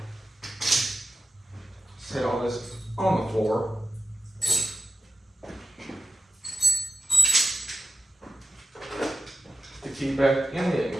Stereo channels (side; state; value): both; normal; correlation 0.90